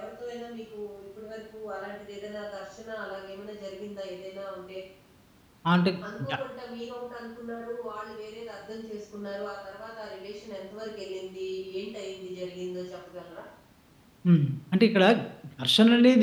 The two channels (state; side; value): identical; both; correlation 1.00